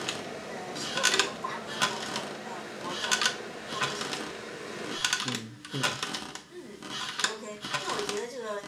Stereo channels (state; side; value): identical; both; correlation 1.00